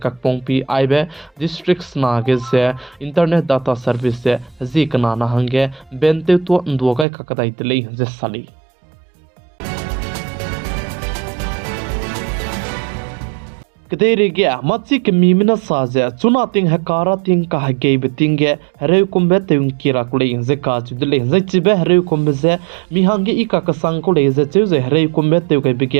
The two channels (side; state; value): left; drops out; at 7.1 s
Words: kakpongpi आइबे डिस्ट्रिक्ट सना के जे इंटरनेट डाटा सर्विस से जी कना ना हंगे बेनते तो दोगा का कदाई दले जे साली कदेरे गया मच्ची के मीमिना साजे चुना तिंग हकारा तिंग का हगे बितिंगे हरे कुंबे तिंग किरा कुले जे काजु दले जे चिबे हरे कुंबे जे मिहांगे इका का संग कुले जे जे हरे कुंबे ते के